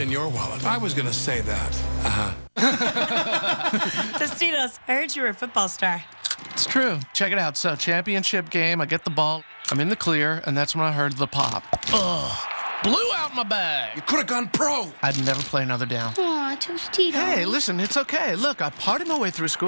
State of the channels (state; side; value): inverted; both; correlation -1.00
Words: in your wallet? I was going to say that. Tostitos, I heard you were a football star. It's true. Check it out. So, championship game, I get the ball, I'm in the clear, and that's when I heard the pop. Ugh. Blew out my bag. You could have gone pro. I'd never play another down. Aw, Tostitos. Hey, listen, it's okay. Look, I partied my way through